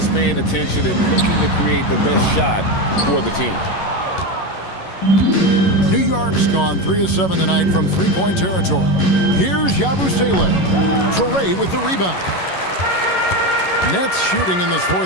paying attention and looking to create the best shot for the team. New York's gone 3 of 7 tonight from three-point territory. Here's Yabusele. Traore with the rebound. Nets shooting in this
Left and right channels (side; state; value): right; late; 11 ms